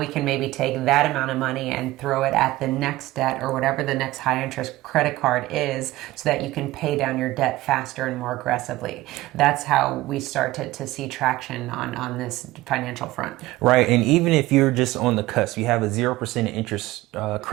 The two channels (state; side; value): quieter; left; 17.7 dB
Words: can maybe take that amount of money and throw it at the next debt or whatever the next high interest credit card is so that you can pay down your debt faster and more aggressively. That's how we start to see traction on this financial front. Right. And even if you're just on the cusp, you have a 0% interest